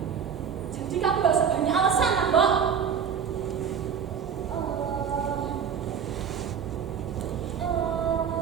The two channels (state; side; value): quieter; left; 7.3 dB